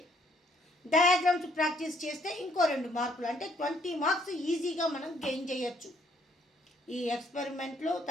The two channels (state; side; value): normal; both; correlation 0.67